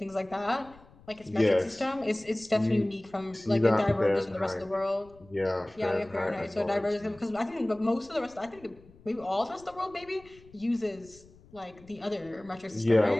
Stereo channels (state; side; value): noise; left; rumble, 25 dB below the sound